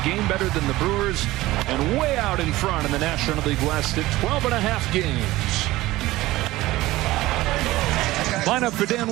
game better than the Brewers and way out in front in the National League West at 12.5 games. Lineup for Dan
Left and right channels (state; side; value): quieter; left; 17.8 dB